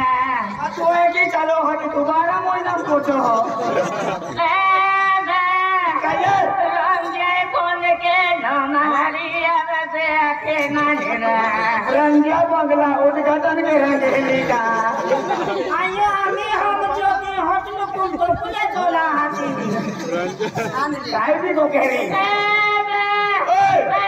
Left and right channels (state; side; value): identical; both; correlation 1.00